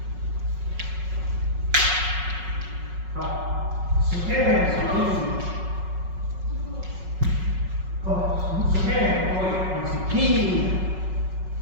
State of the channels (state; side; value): late; left; 5.4 ms